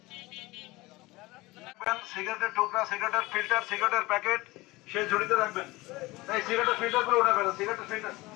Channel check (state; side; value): quieter; right; 21.1 dB